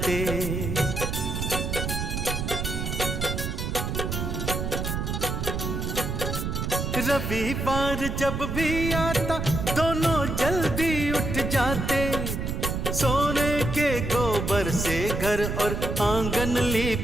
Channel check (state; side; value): noise; right; rumble, 2 dB below the sound